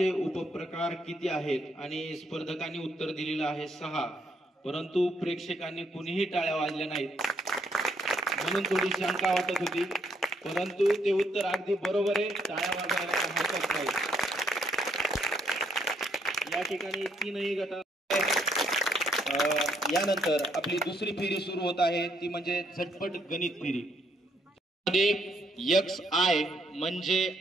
उपप्रकार किती आहेत? आणि स्पर्धकांनी उत्तर दिलेलं आहे 6, परंतु प्रेक्षकांनी कुणीही टाळ्या वाजल्या नाहीत, म्हणून थोडी शंका वाटत होती, परंतु ते उत्तर अगदी बरोबर आहे। टाळ्या वाजवायला हरकत नाही। या ठिकाणी 3ही गट। यानंतर आपली दुसरी फेरी सुरू होत आहे, ती म्हणजे झटपट गणित फेरी। XI म्हणजे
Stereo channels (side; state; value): both; normal; correlation 0.72